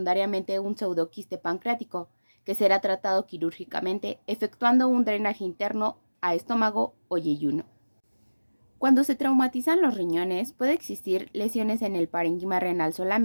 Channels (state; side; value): inverted; both; correlation -1.00